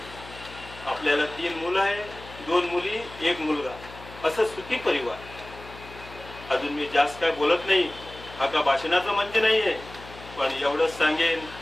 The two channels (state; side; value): noise; left; hum, 17 dB below the sound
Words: आपल्याला 3 मुलं आहे, 2 मुली 1 मुलगा, असं सुखी परिवार. अजून मी जास्त काय बोलत नाही. हा का भाषणाचा मंच नाहीये, पण एवढंच सांगेन,